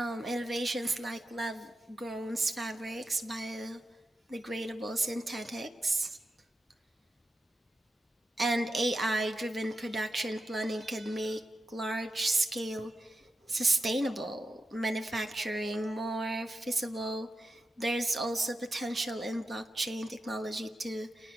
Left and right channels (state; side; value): normal; both; correlation 0.89